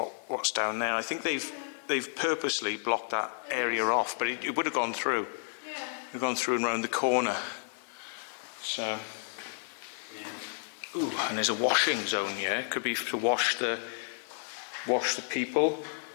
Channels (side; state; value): right; silent; 57 dB below the other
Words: down there. I think they've purposely blocked that area off, but it would have gone through. Yeah. We've gone through and round the corner. So, ooh, and there's a washing zone here. It could be to wash the people,